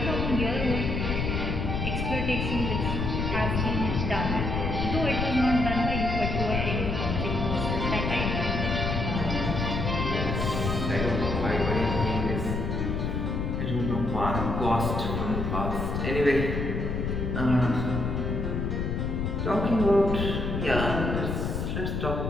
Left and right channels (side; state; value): left; noise; rumble, 1 dB below the sound